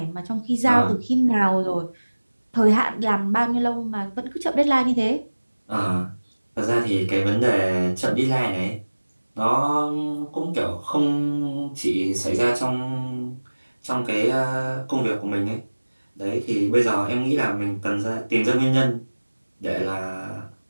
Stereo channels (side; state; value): both; inverted; correlation -1.00